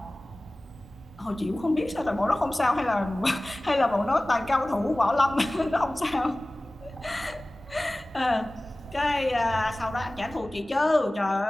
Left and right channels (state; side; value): normal; both; correlation 0.98